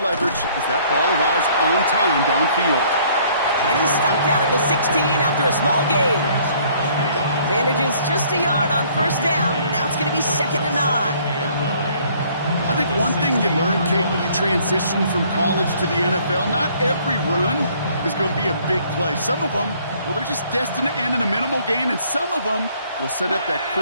as that ball arrives on time downfield. And he's stopped out at the 16 after a small gain. Manages just a yard on first down. Now it's going to be 2nd and 9. I think one thing you learn, Kate, when you transition from college to the NFL, not every run is going to be a big play. Some of them, well, they're just destined to end in a minimal gain, and some of them will set up that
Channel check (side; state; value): both; inverted; correlation -0.60